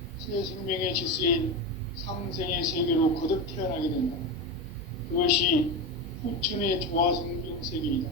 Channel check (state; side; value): normal; both; correlation 0.18